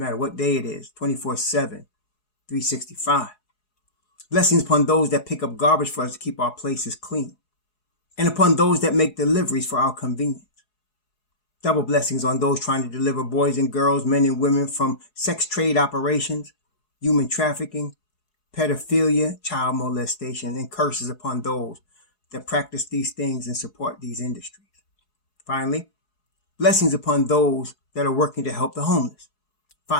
matter what day it is, 24/7, 365. Blessings upon those that pick up garbage for us to keep our places clean, and upon those that make deliveries for our convenience. Double blessings on those trying to deliver boys and girls, men and women from sex trade operations, human trafficking, pedophilia, child molestation, and curses upon those that practice these things and support these industries. Finally, blessings upon those that are working to help the homeless.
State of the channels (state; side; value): late; right; 4.7 ms